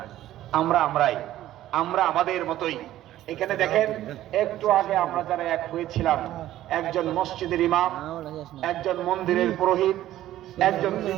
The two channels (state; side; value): quieter; left; 13.7 dB